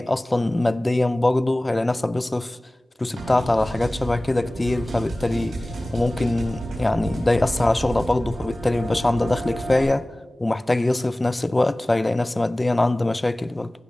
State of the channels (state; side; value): normal; both; correlation 0.98